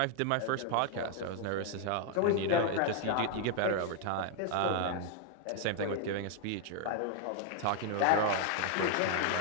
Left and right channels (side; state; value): both; different; correlation 0.00